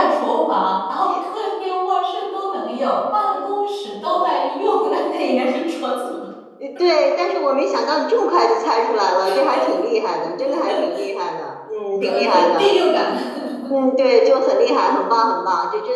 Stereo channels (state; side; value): identical; both; correlation 1.00